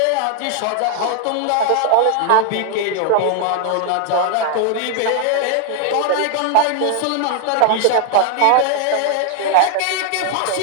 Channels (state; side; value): different; both; correlation 0.00